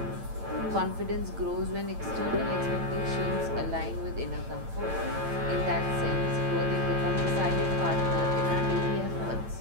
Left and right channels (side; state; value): left; late; 8.9 ms